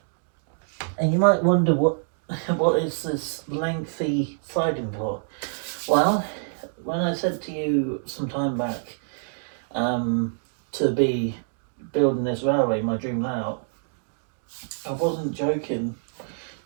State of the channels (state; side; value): silent; left; digital silence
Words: And you might wonder what is this lengthy siding for? Well, when I said to you some time back to be building this railway, my dream layout, I wasn't joking